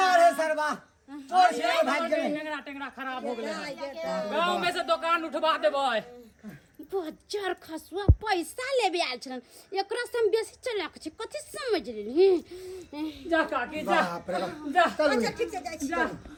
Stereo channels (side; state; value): both; identical; correlation 1.00